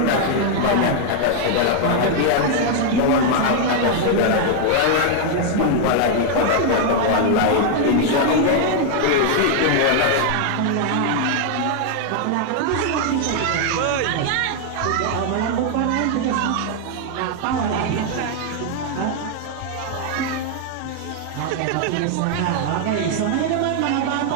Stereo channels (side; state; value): both; different; correlation 0.00